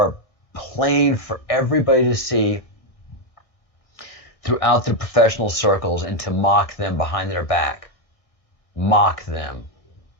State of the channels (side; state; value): right; late; 1.7 ms